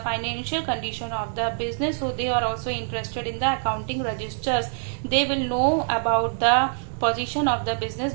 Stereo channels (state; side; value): silent; left; digital silence